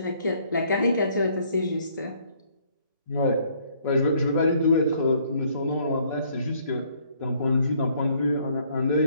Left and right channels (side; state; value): both; inverted; correlation -0.64